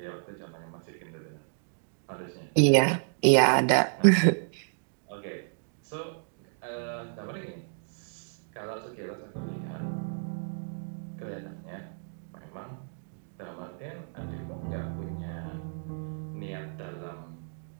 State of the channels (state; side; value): silent; left; digital silence